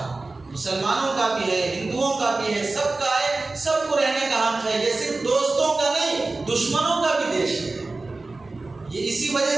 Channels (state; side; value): quieter; left; 3.4 dB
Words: مسلمانوں کا بھی ہے، ہندوؤں کا بھی ہے، سب کا ہے، سب کو رہنے کا حق ہے، یہ صرف دوستوں کا نہیں دشمنوں کا بھی دیش ہے۔ یہ اسی وجہ